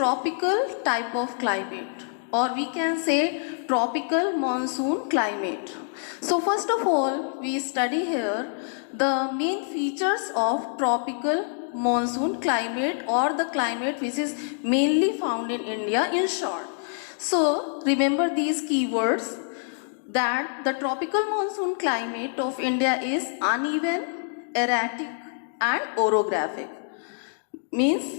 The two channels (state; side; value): silent; right; digital silence